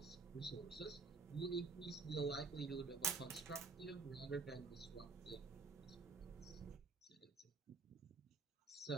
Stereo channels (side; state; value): left; quieter; 4.6 dB